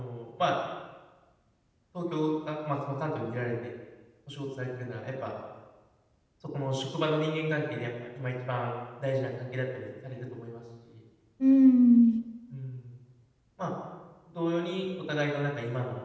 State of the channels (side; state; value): both; identical; correlation 1.00